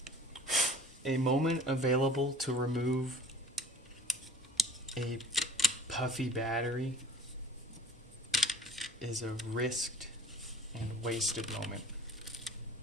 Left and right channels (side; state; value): both; normal; correlation 0.46